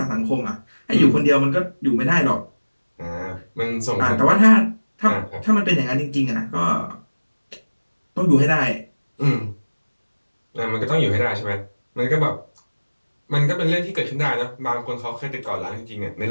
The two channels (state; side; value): inverted; both; correlation -1.00